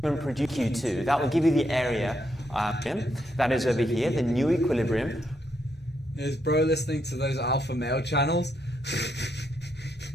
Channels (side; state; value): both; normal; correlation 0.78